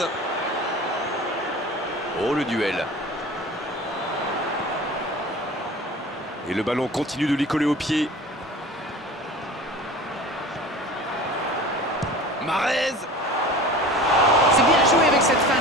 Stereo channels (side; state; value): both; normal; correlation 0.39